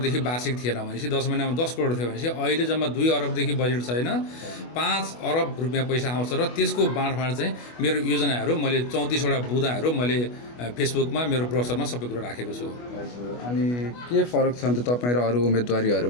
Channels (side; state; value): right; late; 25 ms